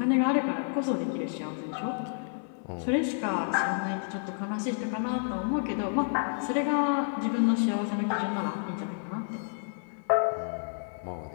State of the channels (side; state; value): right; silent; 58 dB below the other